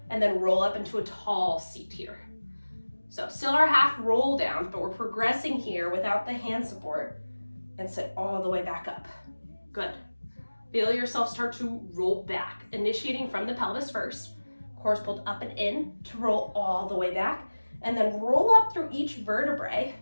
and then roll up into a tall seat here. So still our half roll downs, but we're progressing here without the hand support, and sit all the way back up. Good. Feel yourself start to roll back, initiating from the pelvis first. Core is pulled up and in to roll all the way back, and then roll up through each vertebrae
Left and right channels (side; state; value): both; inverted; correlation -1.00